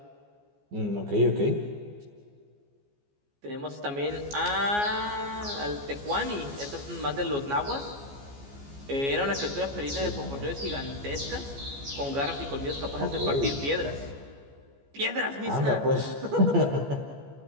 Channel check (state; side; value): late; left; 14 ms